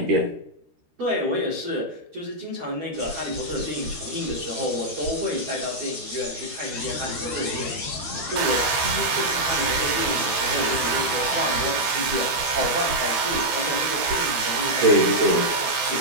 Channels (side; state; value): left; late; 13 ms